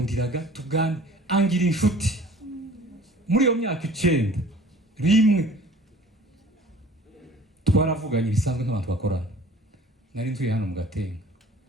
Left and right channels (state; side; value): normal; both; correlation 0.48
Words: tugane angira inshuti. Muri iyo myaka 9 rimwe twaravuganye bisanzwe nk'abantu bakorana. Nari ntuye hano mu Gatenga.